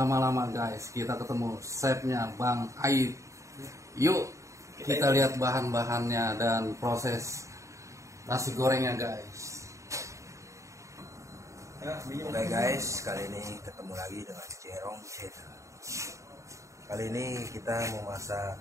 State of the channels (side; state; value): left; late; 0.15 ms